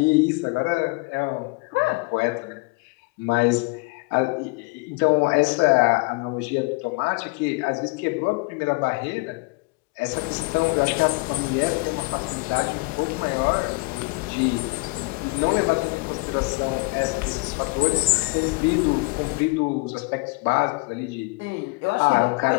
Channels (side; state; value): right; quieter; 25.9 dB